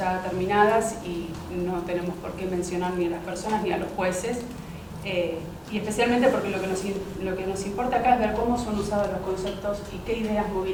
terminadas y no tenemos por qué mencionar ni a las personas ni a los jueces. Y especialmente porque lo que nos importa acá es ver cómo son usados los conceptos y qué ideas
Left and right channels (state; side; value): identical; both; correlation 1.00